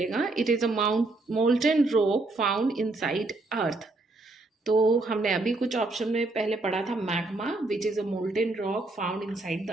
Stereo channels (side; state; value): left; quieter; 3.1 dB